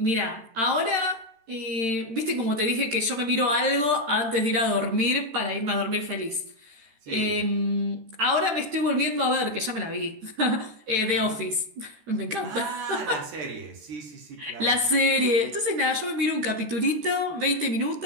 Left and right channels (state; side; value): late; left; 13 ms